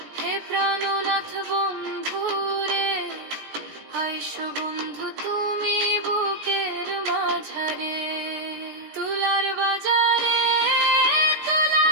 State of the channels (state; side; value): late; left; 16 ms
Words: হে প্রাণনাথ বন্ধু রে, আইসো বন্ধু তুমি বুকের মাঝারে। তুলার বাজারে তুলা